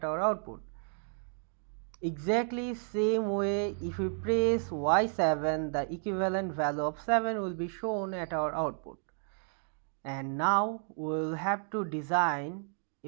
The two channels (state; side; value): silent; left; 56 dB below the other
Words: our output. Exactly same way, if we press y7, the equivalent value of 7 will be shown at our output. And now we'll have to design